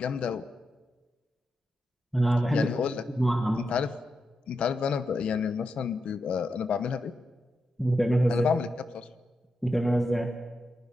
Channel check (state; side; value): normal; both; correlation 0.86